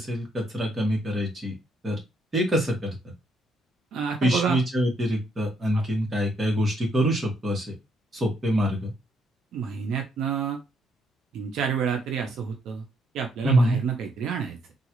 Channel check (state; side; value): normal; both; correlation 0.73